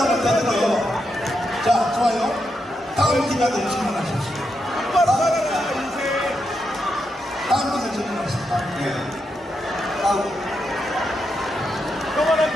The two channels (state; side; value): normal; both; correlation 0.84